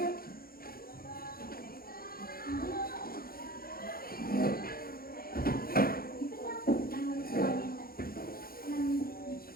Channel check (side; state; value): right; late; 0.43 ms